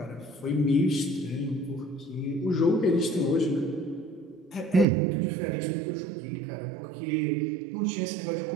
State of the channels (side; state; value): left; drops out; at 4.9 s